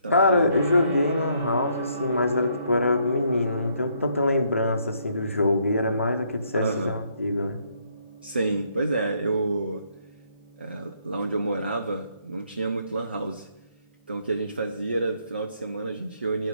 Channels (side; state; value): both; inverted; correlation -0.70